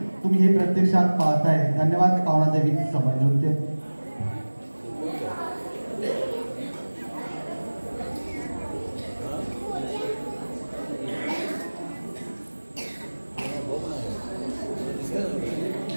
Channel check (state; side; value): inverted; both; correlation -1.00